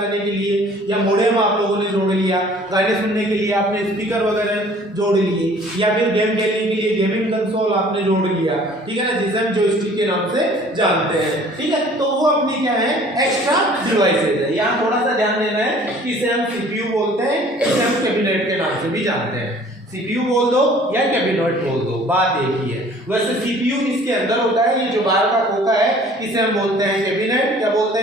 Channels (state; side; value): normal; both; correlation 0.52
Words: के लिए, या मॉडेम आप लोगों ने जोड़ लिया, गाने सुनने के लिए आपने स्पीकर वगैरह जोड़ लिए, या फिर गेम खेलने के लिए गेमिंग कंसोल आपने जोड़ लिया, ठीक है ना, जिसे हम जॉयस्टिक के नाम से जानते हैं, ठीक है। तो वो अपनी क्या है? एक्स्ट्रा डिवाइसेज है। यहाँ थोड़ा सा ध्यान देना है, इसे हम सीपीयू बोलते हैं, इसे हम कैबिनेट के नाम से भी जानते हैं। सीपीयू बोल दो या कैबिनेट बोल दो, बात एक ही है। वैसे सीपीयू इसके अंदर होता है, ये जो बाहर का खोखा है इसे हम बोलते हैं कैबिनेट। क्या बोलते